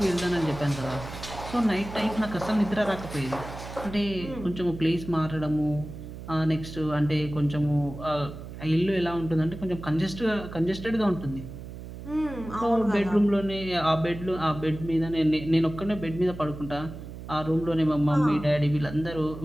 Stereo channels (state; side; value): noise; right; hum, 12 dB below the sound